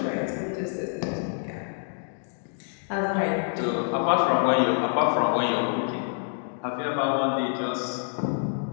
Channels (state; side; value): silent; right; digital silence